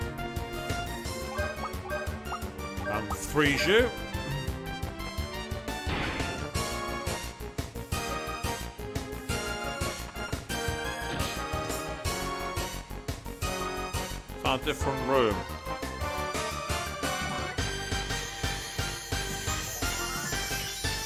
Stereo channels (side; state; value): both; identical; correlation 1.00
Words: And freeze you. It's a different room.